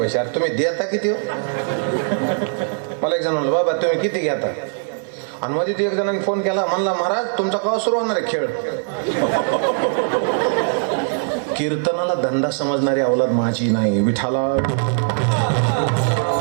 अरे तुम्ही देता किती हो? मला एक जण म्हणलं बाबा तुम्ही किती घेता, आणि मध्ये एक जणांनी फोन केला, म्हणला महाराज तुमचा केव्हा सुरू होणार आहे खेळ. कीर्तनाला धंदा समजणारी अवलाद माझी नाही, विठाला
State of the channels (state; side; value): silent; left; 58 dB below the other